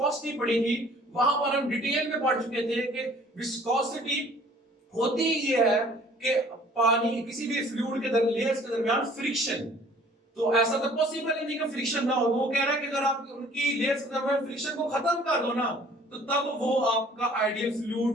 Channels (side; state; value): both; normal; correlation 0.54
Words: पढ़ी थी वहां पर हम डिटेल में पढ़ चुके थे कि विस्कोसिटी होती ये है कि पानी किसी भी फ्लूइड के लेयर्स के दरमियान फ्रिक्शन, तो ऐसा तो पॉसिबल ही नहीं कि फ्रिक्शन ना हो। वो कह रहा है कि अगर आप उनकी लेयर्स के दरमियान फ्रिक्शन को खत्म कर दो ना, तो तब वो आपका आइडियल